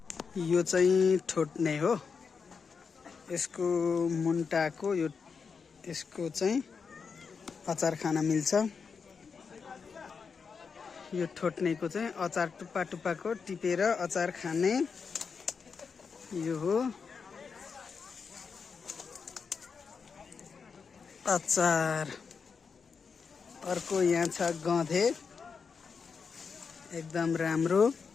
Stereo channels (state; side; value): quieter; right; 5.6 dB